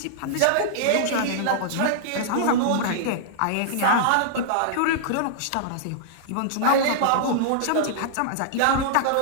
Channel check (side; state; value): both; different; correlation -0.02